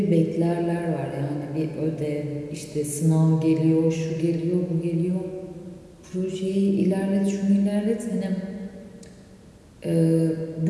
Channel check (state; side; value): identical; both; correlation 1.00